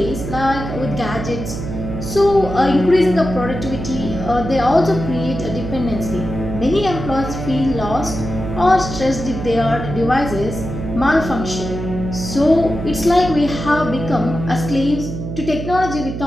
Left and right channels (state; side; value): noise; right; hum, 6 dB below the sound